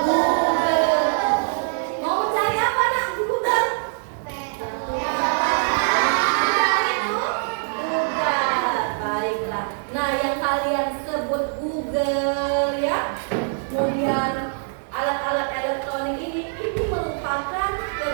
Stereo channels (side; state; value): left; silent; 63 dB below the other